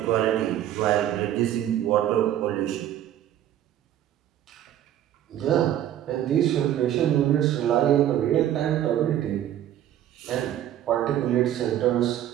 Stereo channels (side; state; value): left; quieter; 11.6 dB